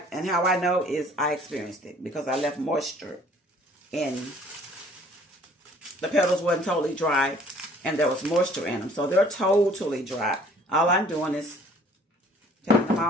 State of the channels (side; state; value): both; normal; correlation 0.55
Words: how I know is I experienced it because I left moisture in the petals. Wasn't totally dry, and there was moisture in them, so they're totally dry. All I'm doing is taking them